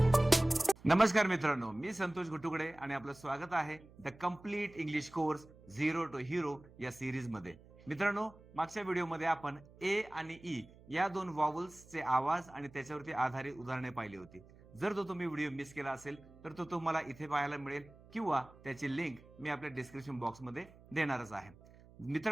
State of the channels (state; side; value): noise; right; hum, 23 dB below the sound